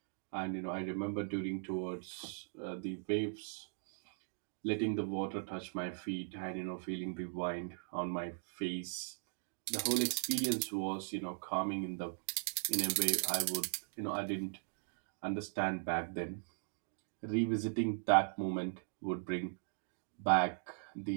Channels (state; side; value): silent; left; digital silence